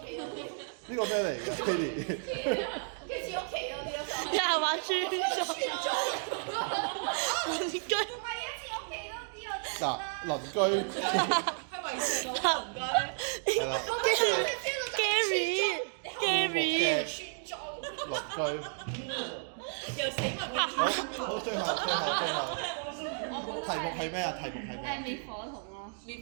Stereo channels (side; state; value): left; silent; 56 dB below the other